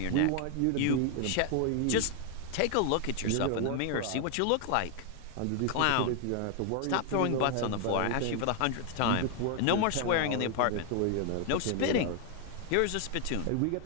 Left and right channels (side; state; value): both; different; correlation 0.01